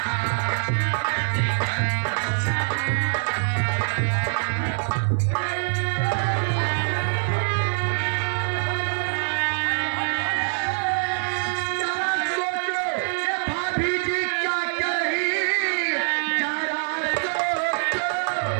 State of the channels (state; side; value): silent; left; digital silence